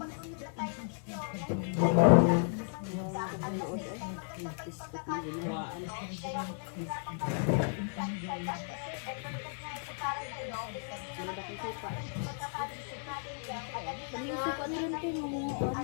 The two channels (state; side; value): silent; right; digital silence